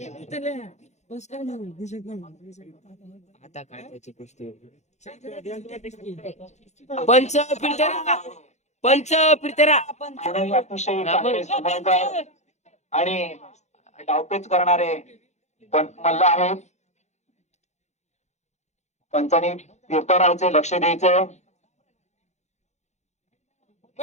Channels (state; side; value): late; right; 0.33 ms